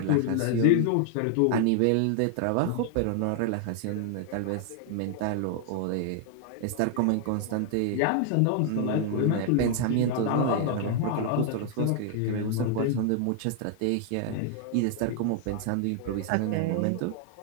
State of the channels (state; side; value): different; both; correlation 0.00